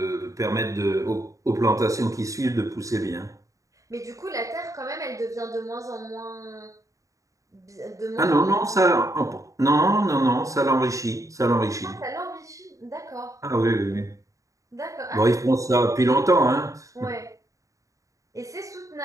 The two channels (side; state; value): left; late; 0.16 ms